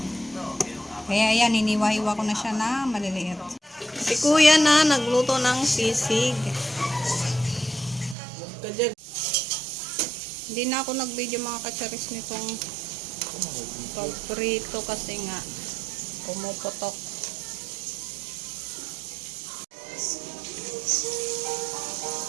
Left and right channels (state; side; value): drops out; left; at 8.2 s